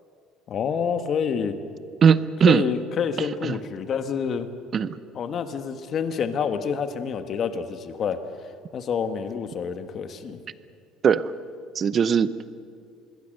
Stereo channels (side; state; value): both; normal; correlation 0.68